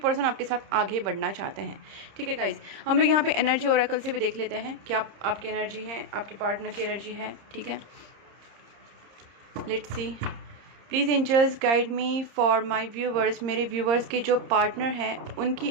आपके साथ आगे बढ़ना चाहते हैं, ठीक है गाइज। हम लोग यहाँ पे एनर्जी ओरेकल से भी देख लेते हैं क्या आपकी एनर्जी है, आपके पार्टनर की एनर्जी है, ठीक है। Let's see, please angels guide me for my viewers, मेरे व्यूवर्स के जो पार्टनर हैं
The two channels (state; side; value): late; left; 30 ms